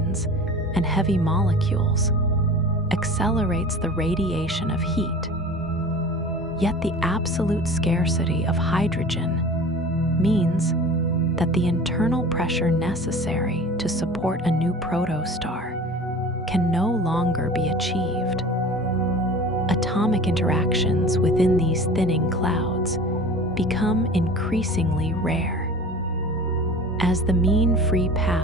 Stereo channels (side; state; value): both; normal; correlation 0.39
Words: and heavy molecules accelerates the radiation of heat. Yet the absolute scarcity of hydrogen means that the internal pressure necessary to support a new protostar can no longer be achieved. Atomic interactions within these thinning clouds become increasingly rare. As the mean free